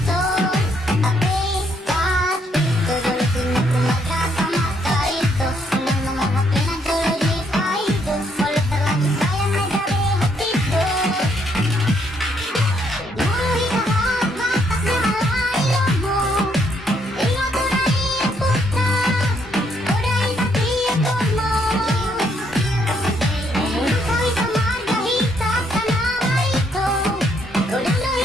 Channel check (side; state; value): both; normal; correlation 0.72